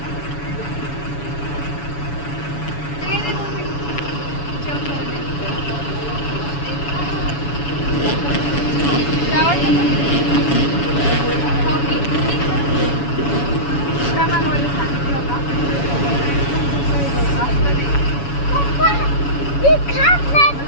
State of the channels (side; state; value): right; late; 7.1 ms